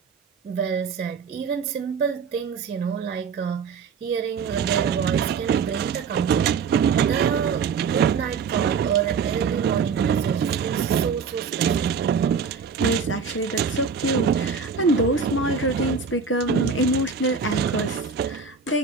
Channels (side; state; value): left; quieter; 5.6 dB